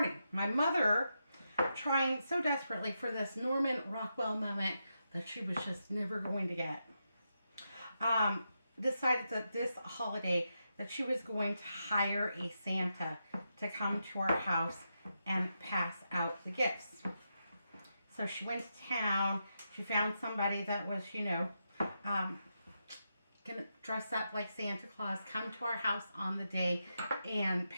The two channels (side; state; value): both; inverted; correlation -0.86